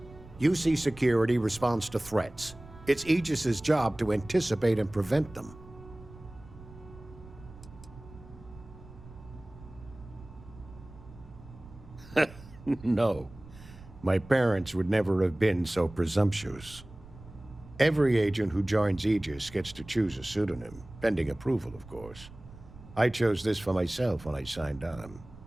UC Security responds to threats. It's Aegis's job to anticipate and prevent them. No. My parents would never have been so presumptuous. Every agent who joins Aegis gets to choose a pseudonym, pending approval, of course. I chose this for myself when I signed on.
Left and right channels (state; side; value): noise; right; rumble, 19 dB below the sound